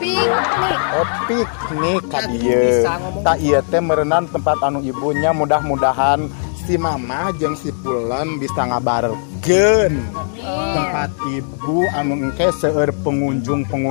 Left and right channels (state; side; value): silent; right; 67 dB below the other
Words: Oh piknik ka dieu. Tak ieu teh meureunana tempat anu ibunya mudah-mudahan si Mama jeung si Pulen bisa ngabarkeun tempat ibu anu engke seueur